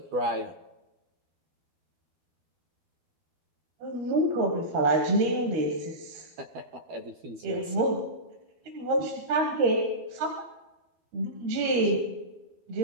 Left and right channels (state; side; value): late; left; 12 ms